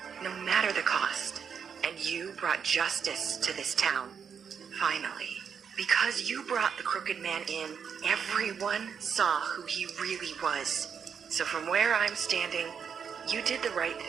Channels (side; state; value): left; quieter; 7.0 dB